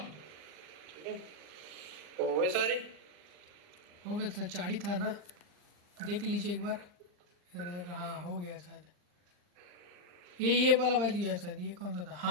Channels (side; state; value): left; late; 39 ms